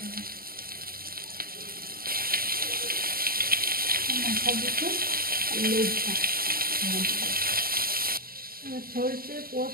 মাথা দিতে লেজটা এবার সরষে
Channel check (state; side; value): late; left; 0.43 ms